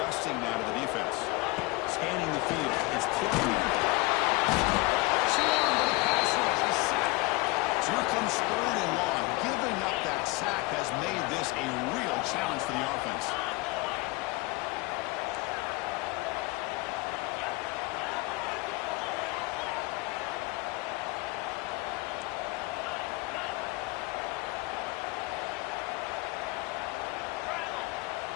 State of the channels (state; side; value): quieter; right; 23.3 dB